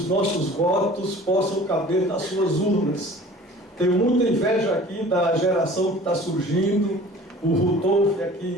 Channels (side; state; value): both; normal; correlation 0.45